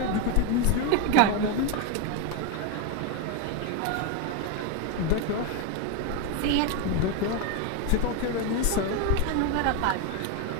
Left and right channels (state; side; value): different; both; correlation 0.02